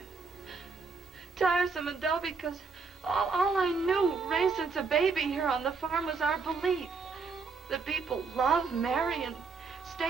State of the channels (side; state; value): left; quieter; 4.7 dB